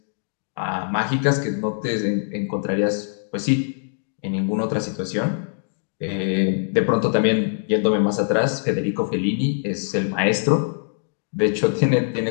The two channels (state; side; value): silent; right; digital silence